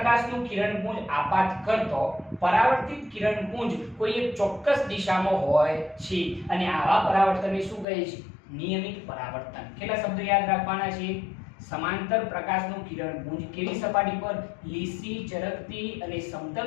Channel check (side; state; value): right; drops out; at 7.9 s